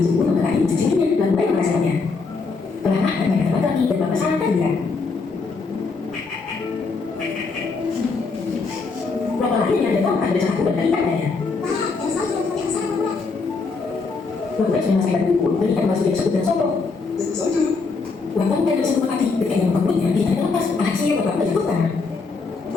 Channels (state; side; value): quieter; right; 4.4 dB